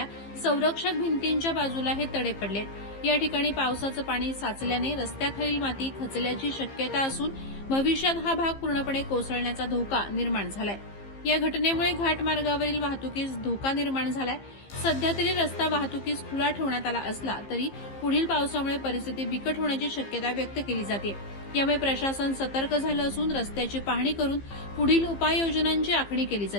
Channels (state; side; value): late; right; 15 ms